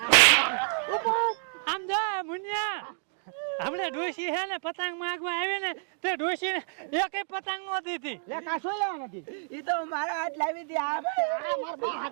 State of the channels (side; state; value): left; silent; digital silence